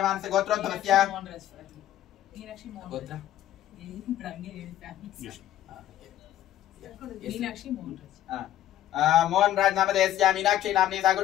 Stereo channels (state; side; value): quieter; right; 12.5 dB